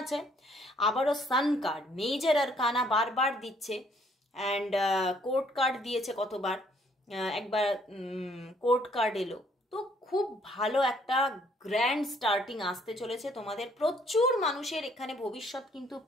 আবারও সান কার্ড, মেজর আরকানা বারবার দিচ্ছে, অ্যান্ড কোর্ট কার্ড দিয়েছে কতবার, একবার কোর্ট কার্ড এলো। তো খুব ভালো একটা গ্র্যান্ড স্টার্টিং আসতে চলেছে তোমাদের। প্রচুর মানুষের এখানে ভবিষ্যৎ কিন্তু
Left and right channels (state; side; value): normal; both; correlation 0.64